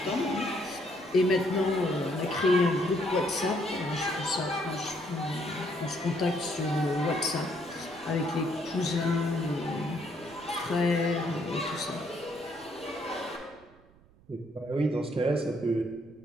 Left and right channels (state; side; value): noise; right; rumble, 27 dB below the sound